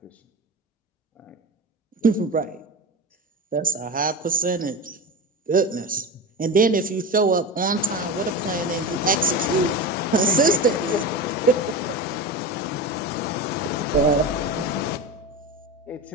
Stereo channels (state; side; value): normal; both; correlation 0.25